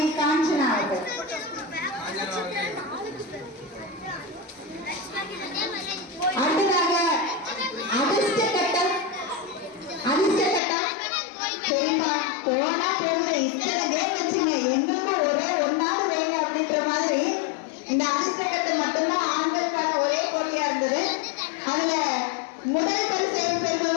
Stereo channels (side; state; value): right; drops out; at 10.6 s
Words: காஞ்சனா அவர்கள். அடுத்ததாக அதிர்ஷ்ட கட்டம். சரிப்பா, போனா போகுது, இத்தனை கேம் வச்சுங்க, எங்களுக்கும் ஒரே ஒன்னாவது வேங்க அப்படின்ற மாதிரி இந்த அதிர்ஷ்ட கட்டம் மட்டும்தான் ஆண்களுக்கான ஒரே போட்டியா இருந்தது. அதுல முதல் பரிசு